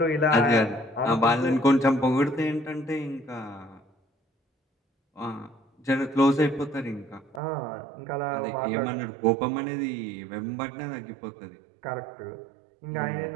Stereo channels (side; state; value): left; drops out; at 7.4 s